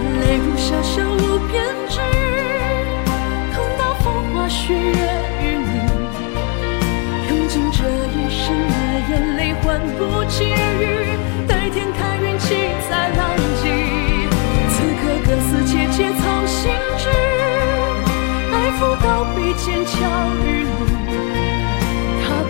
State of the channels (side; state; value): right; quieter; 32.4 dB